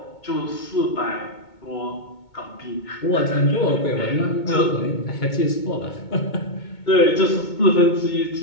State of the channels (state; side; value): late; right; 2.2 ms